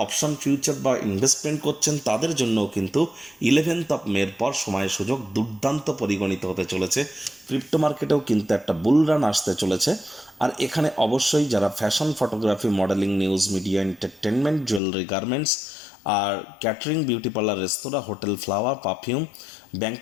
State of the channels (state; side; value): drops out; right; at 14.8 s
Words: অপশন ফিউচার বা ইনভেস্টমেন্ট করছেন, তাদের জন্য কিন্তু 11th মের পর সময় সুযোগ দুর্দান্ত পরিগণিত হতে চলেছে। ক্রিপ্টো মার্কেটেও কিন্তু একটা বুল রান আসতে চলেছে। আর এখানে অবশ্যই যারা fashion, photography, modelling, news media, entertainment, jewellery, garments, আর ক্যাটারিং, বিউটি পার্লার, রেস্তোরাঁ, hotel, flower, perfume,